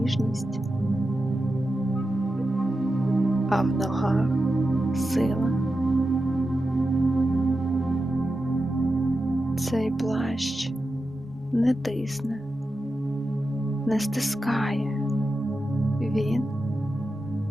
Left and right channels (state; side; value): normal; both; correlation 0.90